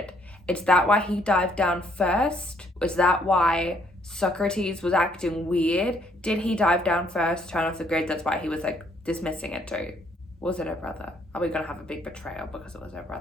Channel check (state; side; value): normal; both; correlation 0.67